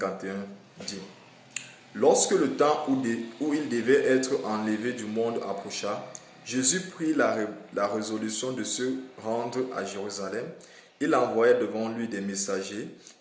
dit: Lorsque le temps où il devait être enlevé du monde approcha, Jésus prit la résolution de se rendre à Jérusalem. Il envoya devant lui des messagers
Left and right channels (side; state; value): both; identical; correlation 1.00